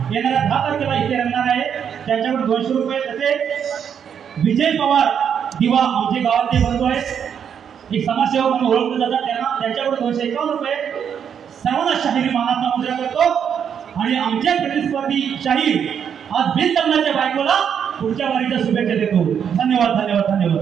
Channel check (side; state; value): left; quieter; 7.9 dB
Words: येणाऱ्या 10 तारखेला इथे रंगणार आहे। त्यांच्याकडे 200 रुपये, तसेच विजय पवार दिवा आमचे गावातले बंधू आहेत, एक समाजसेवक म्हणून ओळखले जातात, त्यांच्याकडे 251 रुपये सर्वांना शाहिरी मानाचा मुद्रा करतो। आणि आमच्या प्रतिस्पर्धी शाहीर आज बिनलग्नाच्या बायकोला पुढच्या वारीच्या शुभेच्छा देतो। धन्यवाद धन्यवाद